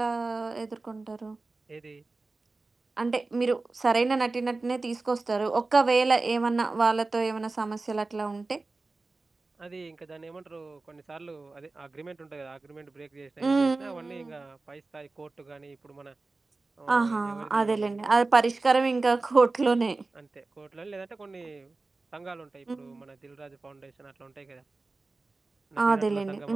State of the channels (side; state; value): left; quieter; 3.5 dB